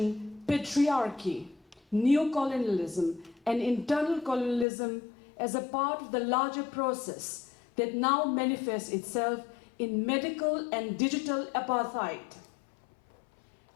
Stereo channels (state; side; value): drops out; right; at 4.7 s